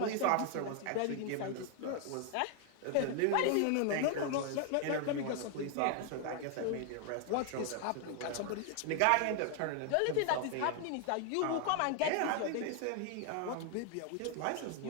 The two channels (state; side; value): different; both; correlation 0.00